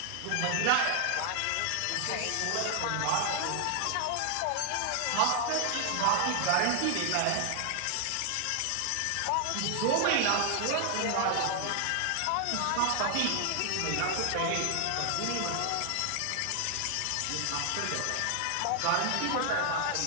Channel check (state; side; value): different; both; correlation 0.00